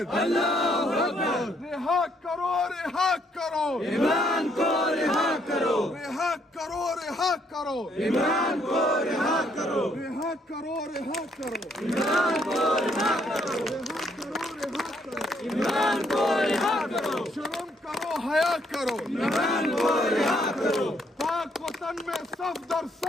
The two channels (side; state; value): both; normal; correlation 0.70